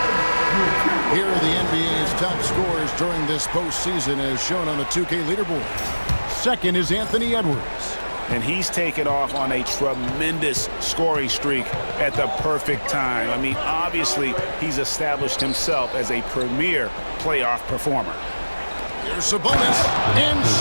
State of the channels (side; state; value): both; inverted; correlation -1.00